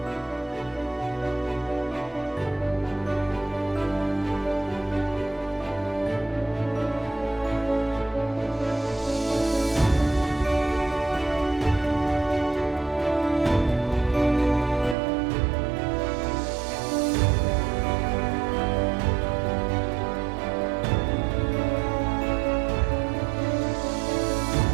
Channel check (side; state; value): left; drops out; at 15.0 s